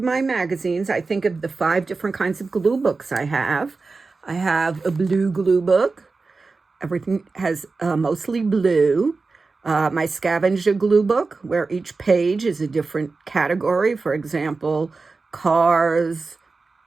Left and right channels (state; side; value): quieter; left; 4.0 dB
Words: magazines, I think of the 5 different kinds of glue books I have. I have a blue glue book. Everything has mostly blue. My scavenger glue book, where each page is a different category. For example, cars,